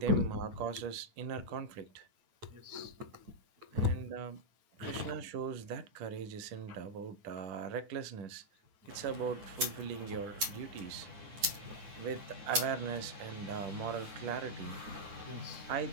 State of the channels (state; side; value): late; left; 9.7 ms